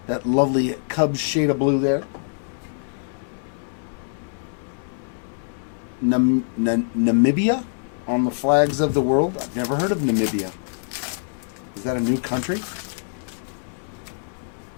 That lovely Cubs shade of blue there. Namibia on the flags of the world. I've never heard of Namibia. Is that a new country?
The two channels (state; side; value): silent; right; digital silence